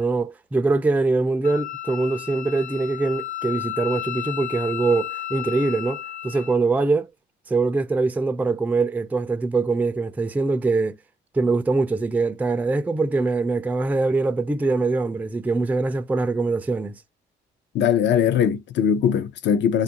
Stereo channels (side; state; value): both; normal; correlation 0.75